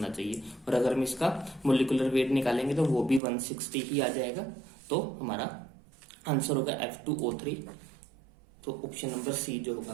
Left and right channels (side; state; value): left; drops out; at 3.2 s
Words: चाहिए। और अगर हम इसका मोलिकुलर वेट निकालेंगे तो वो भी 160 ही आ जाएगा। तो हमारा आंसर होगा F2O3। तो ऑप्शन नंबर सी जो होगा